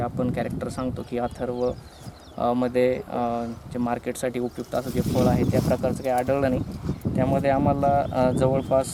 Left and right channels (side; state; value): both; identical; correlation 1.00